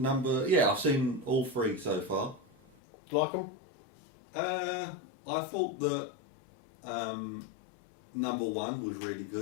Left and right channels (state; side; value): drops out; right; at 2.8 s